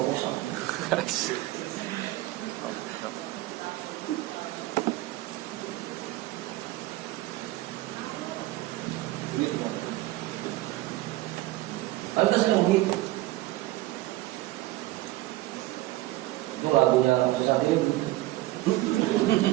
Kan kita sering begitu. Itu lagunya Susah Diri.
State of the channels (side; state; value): left; quieter; 17.6 dB